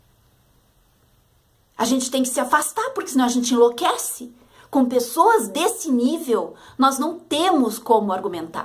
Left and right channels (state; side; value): identical; both; correlation 1.00